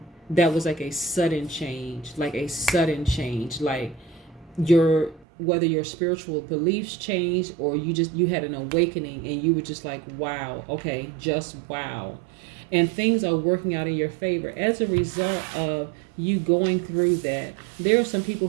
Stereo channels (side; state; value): left; drops out; at 5.2 s